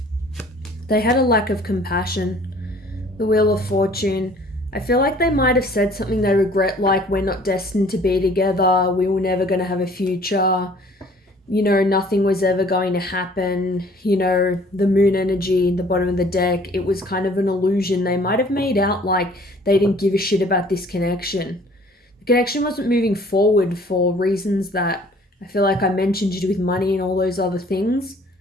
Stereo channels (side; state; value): both; normal; correlation 0.54